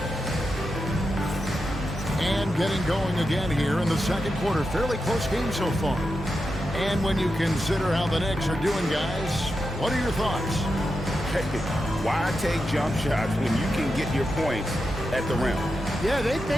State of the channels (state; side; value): normal; both; correlation 0.88